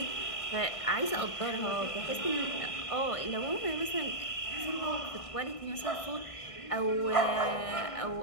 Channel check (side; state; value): right; late; 1.6 ms